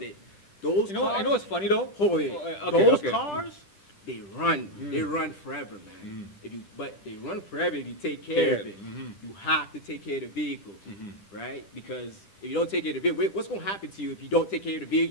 those You know cars, what's funny though? hold it. Okay, Those okay. cars, they run forever, man. But they run forever if you take care of it. You have to take care of the vehicle, right? Because if you don't take care of the vehicle, what's going to happen to you if you don't take care of the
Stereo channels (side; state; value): right; late; 10 ms